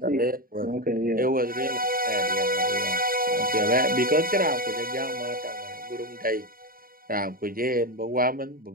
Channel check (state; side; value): late; left; 0.42 ms